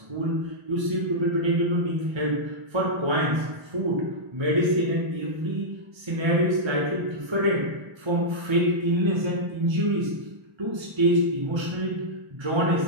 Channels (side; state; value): left; late; 1.3 ms